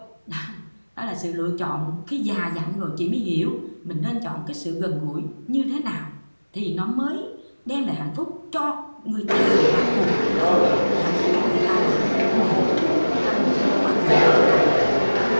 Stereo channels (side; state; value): both; inverted; correlation -1.00